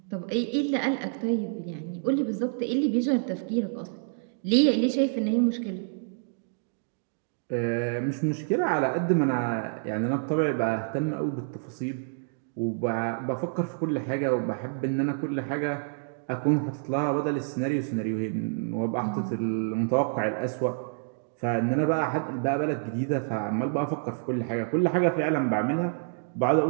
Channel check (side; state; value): left; silent; digital silence